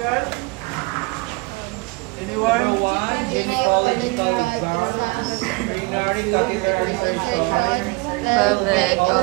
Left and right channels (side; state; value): left; quieter; 26.8 dB